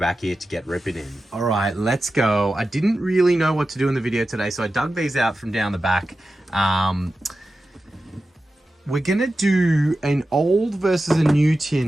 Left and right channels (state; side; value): normal; both; correlation 0.93